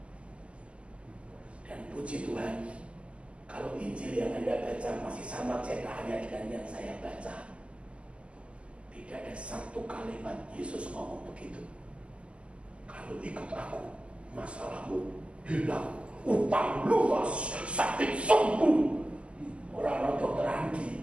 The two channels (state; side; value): late; left; 0.056 ms